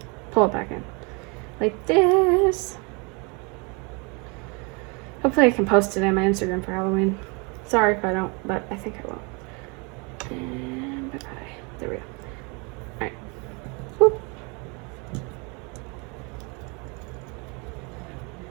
pull it back in. Like this. Hopefully I can post it on my Instagram for Halloween. Sorry if I don't, but I think I will. And bye-bye. There we go. Alright. Whoop.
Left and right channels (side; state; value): left; quieter; 31.4 dB